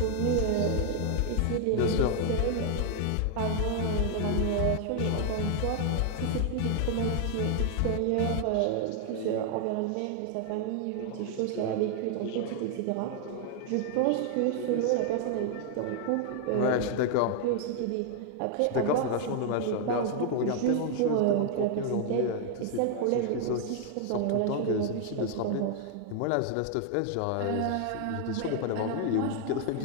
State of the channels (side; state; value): both; different; correlation 0.00